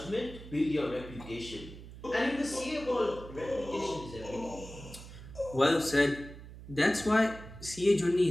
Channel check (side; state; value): right; noise; hum, 15 dB below the sound